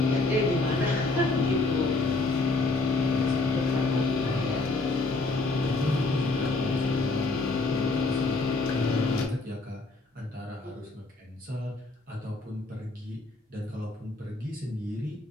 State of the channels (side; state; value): right; quieter; 3.3 dB